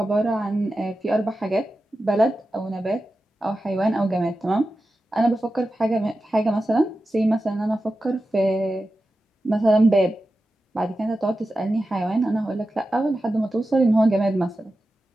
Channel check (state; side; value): normal; both; correlation 0.92